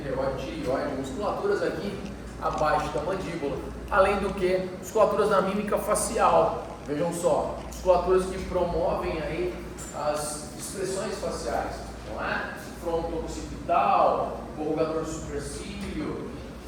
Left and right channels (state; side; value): identical; both; correlation 1.00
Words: tireoide, musculaturas aqui abaixo da mandíbula. Além do que, musculaturas da mímica facial. Vejam só, musculaturas que promovem aí as expressões faciais, não é? Fronto occipital, corrugador supercílio,